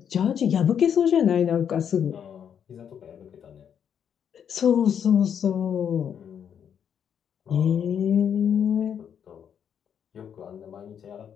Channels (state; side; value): quieter; right; 8.3 dB